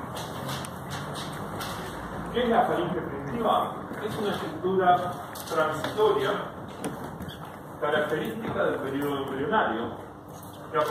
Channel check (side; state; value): both; identical; correlation 1.00